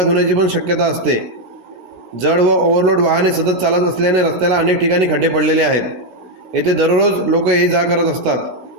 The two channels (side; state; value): left; late; 16 ms